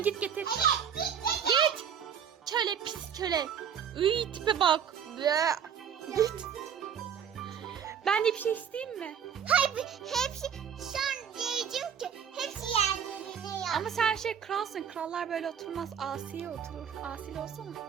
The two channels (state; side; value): quieter; left; 8.0 dB